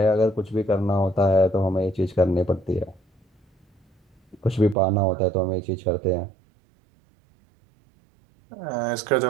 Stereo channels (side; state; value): left; drops out; at 4.8 s